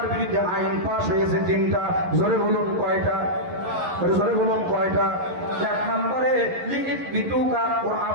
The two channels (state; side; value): late; left; 11 ms